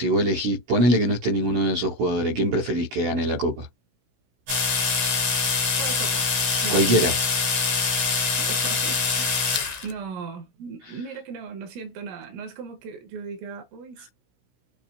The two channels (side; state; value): left; late; 16 ms